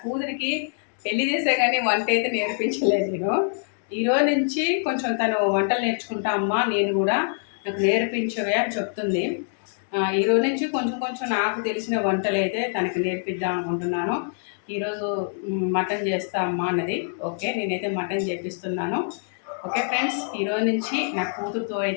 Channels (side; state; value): right; silent; digital silence